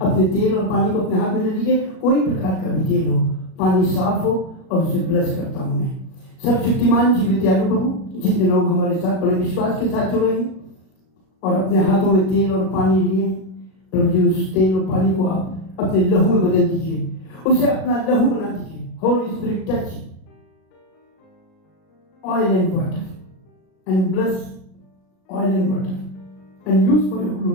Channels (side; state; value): right; late; 37 ms